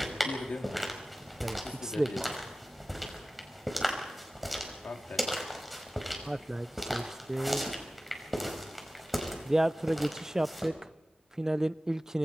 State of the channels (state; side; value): normal; both; correlation 0.96